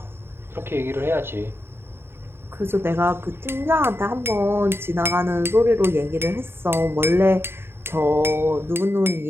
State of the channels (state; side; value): late; left; 0.11 ms